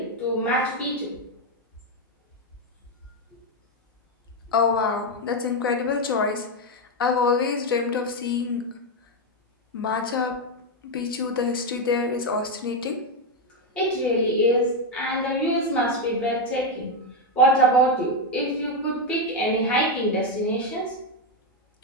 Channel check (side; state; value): both; normal; correlation 0.05